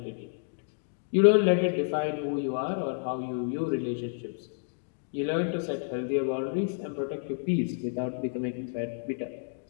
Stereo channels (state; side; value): silent; right; digital silence